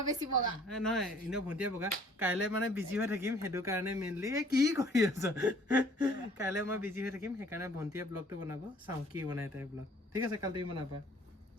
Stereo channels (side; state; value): both; normal; correlation 0.56